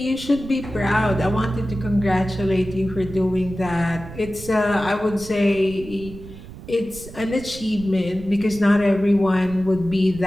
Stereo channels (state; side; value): noise; right; rumble, 15 dB below the sound